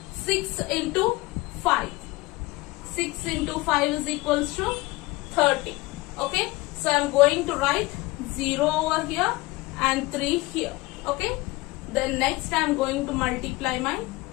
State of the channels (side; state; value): right; quieter; 21.3 dB